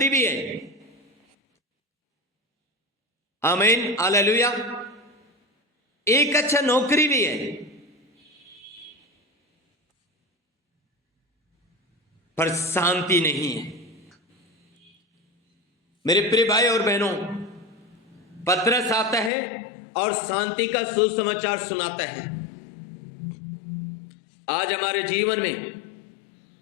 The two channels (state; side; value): drops out; right; at 19.3 s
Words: भी है। आमीन। हालेलुया। एक अच्छा नौकरी भी है, पर शांति नहीं है। मेरे प्रिय भाई और बहनों, पतरस आता है और शांति का सुसमाचार सुनाता है। आज हमारे जीवन में